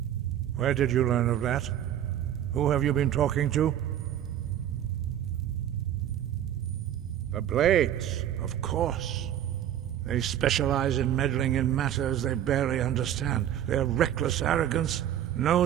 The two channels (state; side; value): quieter; left; 10.9 dB